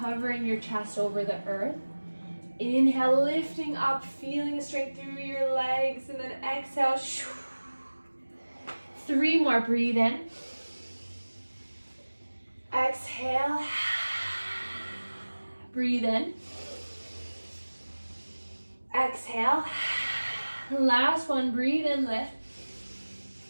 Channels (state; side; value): inverted; both; correlation -1.00